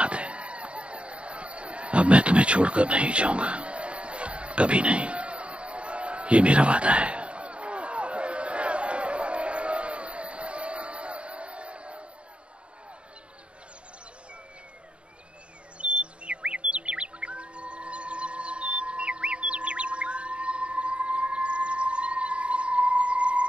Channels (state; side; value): late; left; 0.058 ms